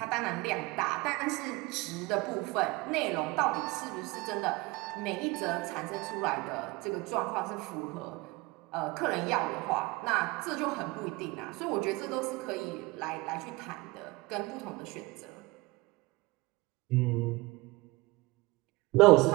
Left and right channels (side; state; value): left; quieter; 22.6 dB